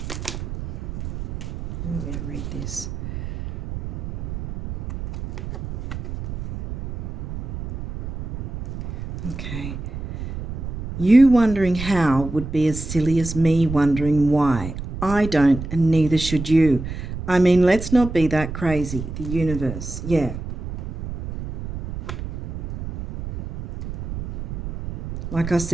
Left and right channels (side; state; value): right; noise; rumble, 8 dB below the sound